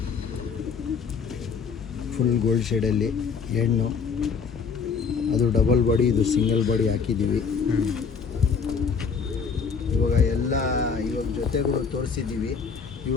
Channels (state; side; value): quieter; right; 5.8 dB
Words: ಫುಲ್ ಗೋಲ್ಡ್ ಶೇಡಲ್ಲಿ ಹೆಣ್ಣು. ಅದು ಡಬಲ್ ಬಾಡಿ, ಇದು ಸಿಂಗಲ್ ಬಾಡಿ ಹಾಕಿದ್ದೀವಿ. ಇವಾಗ ಜೊತೆಗಳು ತೋರಿಸಿದ್ದೀವಿ.